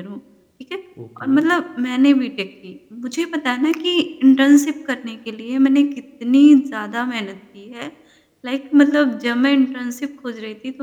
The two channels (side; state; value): both; identical; correlation 1.00